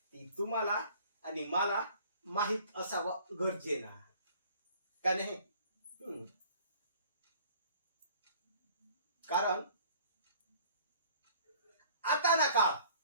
तुम्हाला आणि मला माहित असावं गरजेनं का नाही? कारण आता ना काळ,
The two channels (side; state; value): both; inverted; correlation -0.52